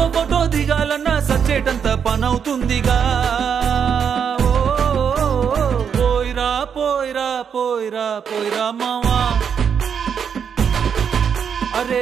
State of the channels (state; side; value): quieter; left; 7.3 dB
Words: ఫోటో దిగాలన్నా సచ్చేటంత పనవుతుందిగా పోయిరా పోయిరా పోయిరా పోయిరా మావా అరే